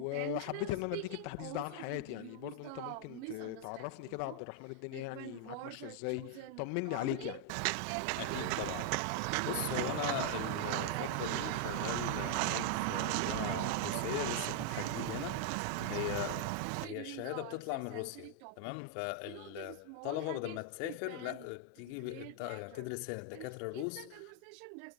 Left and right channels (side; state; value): both; different; correlation 0.00